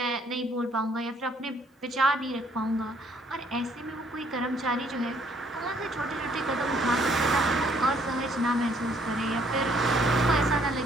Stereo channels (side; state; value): both; normal; correlation 0.64